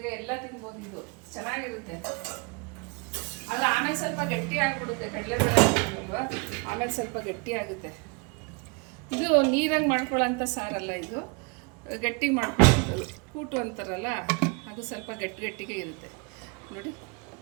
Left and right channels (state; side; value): quieter; left; 30.7 dB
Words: ಎಲ್ಲ ತಿನ್ಬೋದು. ಇದು ಚೆನ್ನಾಗಿರುತ್ತೆ. ಅದು ಆಮೇಲೆ ಸ್ವಲ್ಪ ಗಟ್ಟಿ ಆಗಿಬಿಡುತ್ತೆ. ಕಡಲೆಬೇಳೆ ಹಾಕಿಲ್ವ, ಆಮೇಲೆ ಸ್ವಲ್ಪ ಗಟ್ಟಿ ಆಗುತ್ತೆ. ಇದು ನೀರಂಗೆ ಮಾಡ್ಕೊಳ್ಳೋಂಥ ಸಾರಲ್ಲ, ಇದು ಗಟ್ಟಿ ಮಾಡ್ಕೊಳ್ಳೋದು. ಕೂಟು ಅಂತಾರಲ್ಲ, ಅದು ಸ್ವಲ್ಪ ಗಟ್ಟಿಗೆ ಇರುತ್ತೆ ನೋಡಿ.